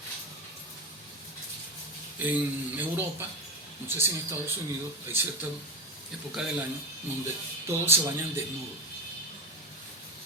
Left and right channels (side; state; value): both; normal; correlation 0.19